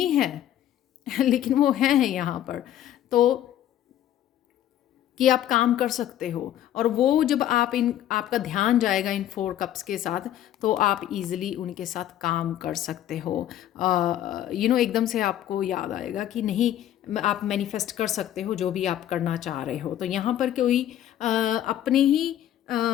है लेकिन वो हैं यहाँ पर। तो कि आप काम कर सकते हो, और वो जब आप आपका ध्यान जाएगा इन 4 कप्स के साथ, तो आप इजीली उनके साथ काम कर सकते हो। एकदम से आपको याद आएगा कि नहीं, आप मैनिफेस्ट कर सकते हो जो भी आप करना चाह रहे हो। तो यहाँ पर कोई अपने ही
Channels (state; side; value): quieter; right; 11.8 dB